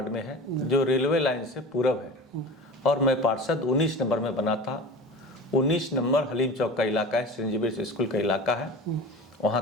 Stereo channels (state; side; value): normal; both; correlation 0.35